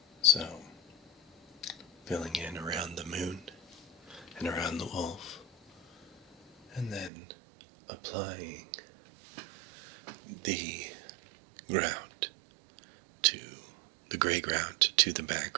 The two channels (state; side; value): drops out; left; at 7.1 s